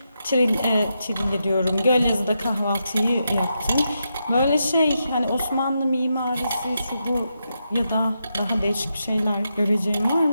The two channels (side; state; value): both; inverted; correlation -0.85